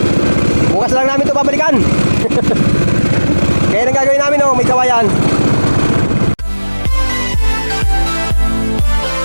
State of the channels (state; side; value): inverted; both; correlation -1.00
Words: Bukas lang namin ito babalikan. Kaya nang gagawin namin, oh, may kawayan.